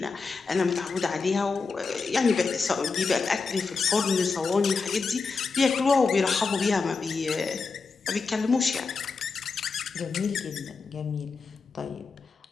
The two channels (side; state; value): right; quieter; 4.6 dB